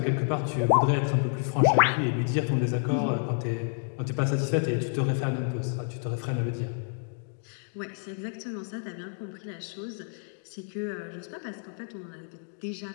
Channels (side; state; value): right; silent; 58 dB below the other